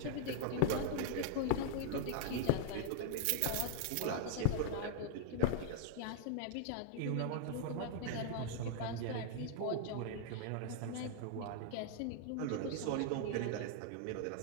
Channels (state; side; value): different; both; correlation -0.01